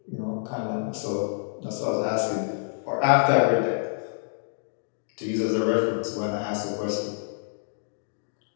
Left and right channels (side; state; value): right; silent; digital silence